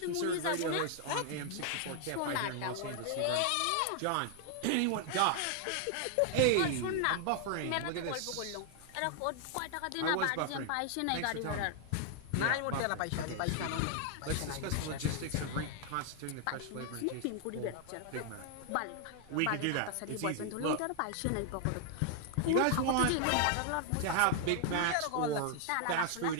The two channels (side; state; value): both; different; correlation 0.00